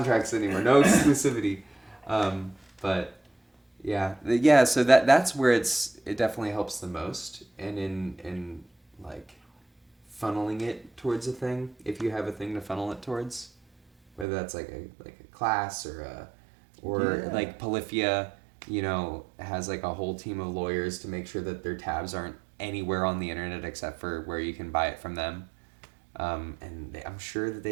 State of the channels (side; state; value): left; drops out; at 14.2 s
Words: anymore. No exclusivity. But yeah. So that's where it definitely helps the most, and in like funneling it towards a thing, if you have a thing to funnel it towards, whether that's like a class or like Polyphia, you know, has like a whole team of lawyers to make sure that their tabs aren't anywhere on the internet except for where you can buy it from them. And I'm sure that